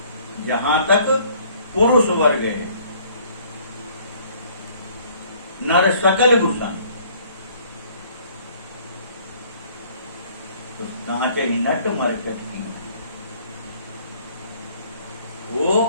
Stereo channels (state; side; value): inverted; both; correlation -0.59